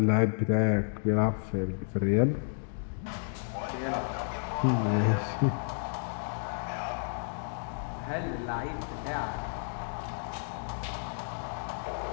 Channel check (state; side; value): silent; right; digital silence